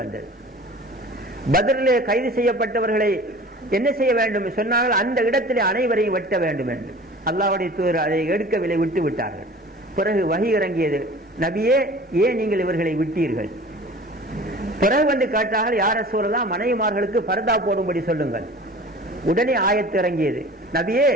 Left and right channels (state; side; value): normal; both; correlation 0.42